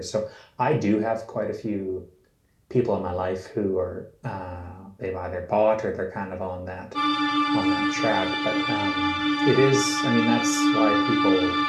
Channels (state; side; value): identical; both; correlation 1.00